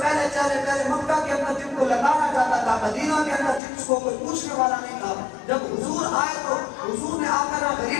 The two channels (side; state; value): right; drops out; at 3.6 s